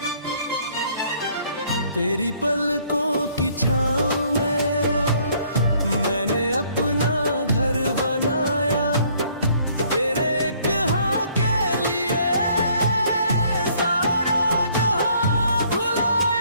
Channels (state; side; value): inverted; both; correlation -0.62